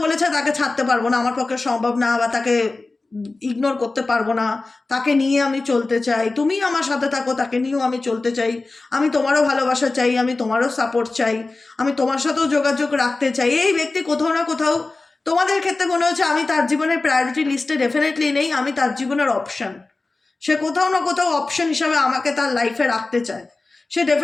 বলেছে তাকে ছাড়তে পারবো না, আমার পক্ষে সম্ভব না, বা তাকে ইগনোর করতে পারবো না, তাকে নিয়ে আমি চলতে চাই, তুমি আমার সাথে থাকো, তাকে নিয়েও আমি চলতে চাই, আমি তোমারও ভালোবাসা চাই, আমি তোমারও সাপোর্ট চাই, আমি তোমার সাথেও যোগাযোগ রাখতে চাই। এই ব্যক্তি কোথাও না কোথাও তোমাদের ক্ষেত্রে মনে হচ্ছে আমি তার জীবনের প্রায়োরিটি লিস্টে ডেফিনেটলি নেই, আমি তার জীবনের অপশন। সে কোথাও না কোথাও অপশন হিসাবে আমাকে তার লাইফে রাখতে চায়। সে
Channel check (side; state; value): right; quieter; 3.4 dB